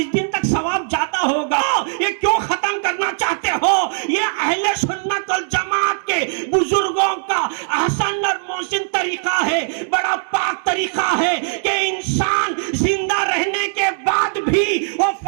دن تک ثواب جاتا ہوگا. یہ کیوں ختم کرنا چاہتے ہو؟ یہ اہل سنت والجماعت کے بزرگوں کا احسن اور محسن طریقہ ہے, بڑا پاک طریقہ ہے کہ انسان زندہ رہنے کے بعد بھی وہ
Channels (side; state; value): left; silent; 57 dB below the other